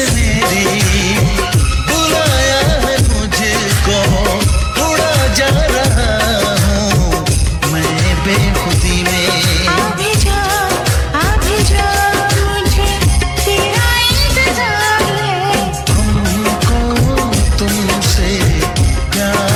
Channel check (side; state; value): both; identical; correlation 1.00